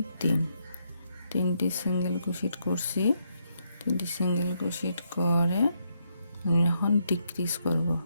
3 3টি সিঙ্গেল ক্রোশেট করছি। 3টি সিঙ্গেল ক্রোশেট করে আমি এখন ডিক্রিজ করব।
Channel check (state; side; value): inverted; both; correlation -0.77